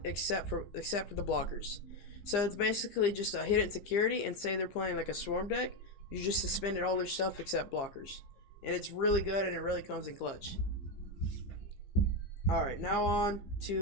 except for the blockers. So it's basically just a hit in security, and say they're playing like a swarm deck, you just suspended all their stuff except blockers. And it's really good, and it really comes in clutch. Alright, now on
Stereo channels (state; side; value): late; right; 15 ms